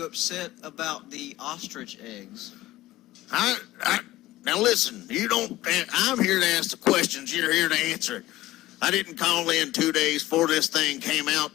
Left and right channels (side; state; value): right; quieter; 16.7 dB